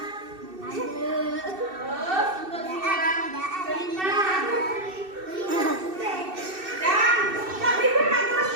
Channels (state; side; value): late; left; 2.6 ms